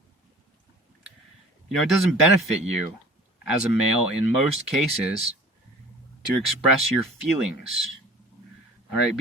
You know, it doesn't benefit you as a male in most cases to express your feelings. All right,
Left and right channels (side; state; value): both; normal; correlation 0.45